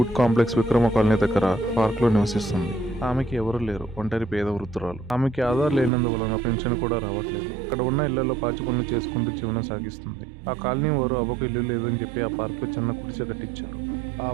కాంప్లెక్స్ విక్రమ కాలనీ దగ్గర పార్క్ లో నివసిస్తుంది. ఆమెకి ఎవరు లేరు, ఒంటరి పేద వృద్ధురాలు. ఆమెకి ఆధార్ లేనందువలన పెన్షన్ కూడా రావట్లేదు. అక్కడ ఉన్న ఇళ్లలో పాచి పనులు చేసుకుంటూ జీవనం సాగిస్తుంది. ఆ కాలనీ వారు అవ్వకు ఇల్లు లేదని చెప్పి ఆ పార్క్ లో చిన్న గుడిసె కట్టించారు. ఆ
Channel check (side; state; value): left; drops out; at 5.9 s